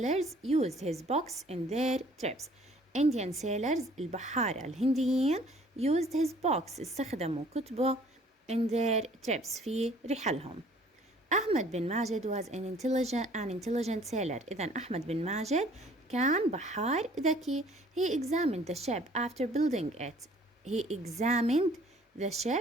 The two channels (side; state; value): both; normal; correlation 0.56